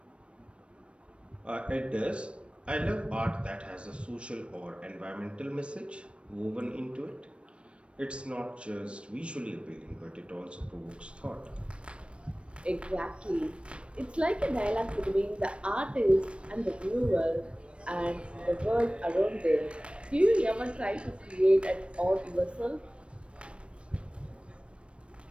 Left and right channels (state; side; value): late; left; 0.059 ms